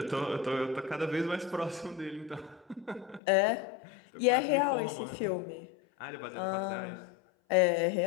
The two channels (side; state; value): right; drops out; at 3.2 s